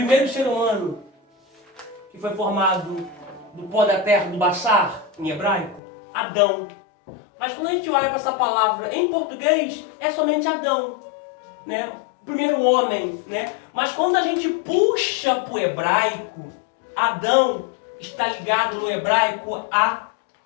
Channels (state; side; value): drops out; right; at 5.8 s